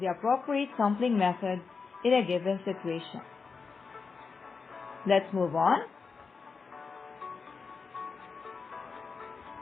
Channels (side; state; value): right; quieter; 5.0 dB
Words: the appropriate sampling method in a given situation. Let's move on.